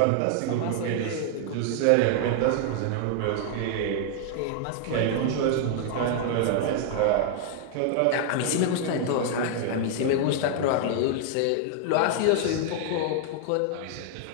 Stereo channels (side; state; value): both; different; correlation 0.00